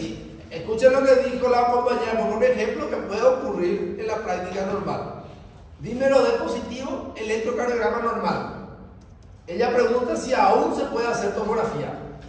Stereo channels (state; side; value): identical; both; correlation 1.00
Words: escuchen lo que dijo la compañera, por un ejemplo que puede ocurrir en la práctica normal. Dímero D positivo, electrocardiograma normal. Ella pregunta si aún se puede hacer tomografía.